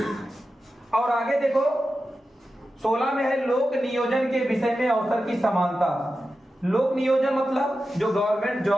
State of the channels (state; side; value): normal; both; correlation 0.92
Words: और आगे देखो 16 में है लोक नियोजन के विषय में अवसर की समानता। लोक नियोजन मतलब जो गवर्नमेंट